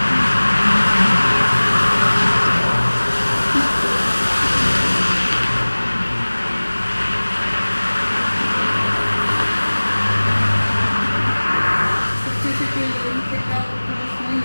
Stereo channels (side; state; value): both; inverted; correlation -1.00